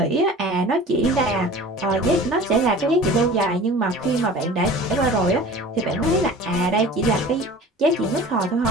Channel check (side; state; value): both; normal; correlation 0.42